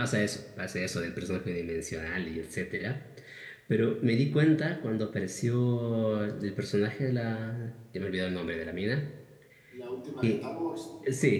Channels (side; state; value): both; identical; correlation 1.00